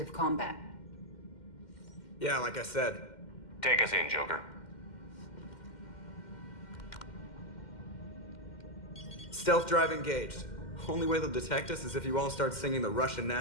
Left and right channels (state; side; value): late; right; 2.1 ms